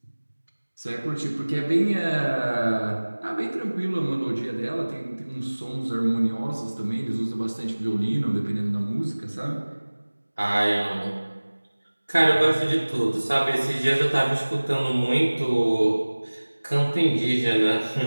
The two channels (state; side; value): inverted; both; correlation -1.00